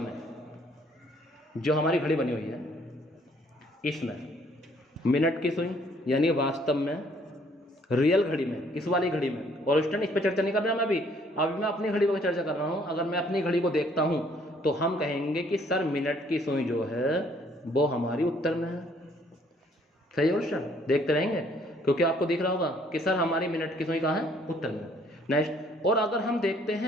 जो हमारी घड़ी बनी हुई है इसमें मिनट की सुई, यानी वास्तव में रियल घड़ी में, इस वाली घड़ी में, और स्टूडेंट इस पर चर्चा नहीं कर रहा मैं अभी मैं अपनी घड़ी पर चर्चा कर रहा हूँ। अगर मैं अपनी घड़ी को देखता हूँ तो हम कहेंगे कि सर मिनट की सुई जो है वो हमारी उत्तर में है, सही है स्टूडेंट? देखते रहेंगे क्योंकि आपको दिख रहा होगा कि सर हमारी मिनट की सुई कहाँ है, उत्तर में। नेक्स्ट, और अगर हम देखते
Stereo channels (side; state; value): both; normal; correlation 0.62